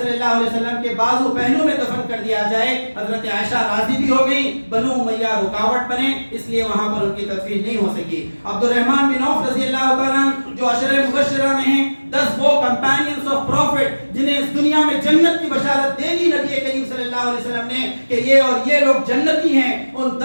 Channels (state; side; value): inverted; both; correlation -1.00